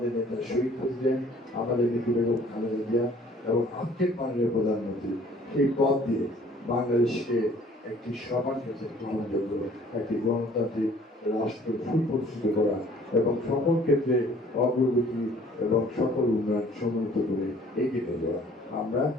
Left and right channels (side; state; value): both; normal; correlation 0.55